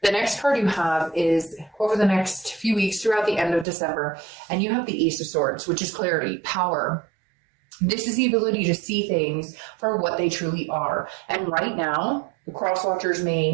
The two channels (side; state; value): left; drops out; at 3.7 s